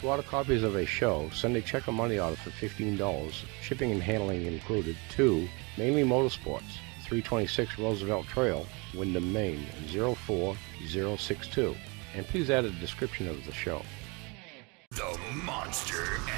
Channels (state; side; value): quieter; left; 29.4 dB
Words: order copies of a show, send a check or money order for $15, shipping and handling included, to Mainely Motorsports, 326 Roosevelt Trail, Windham, Maine, 04062. And please add a description of the show. The Monster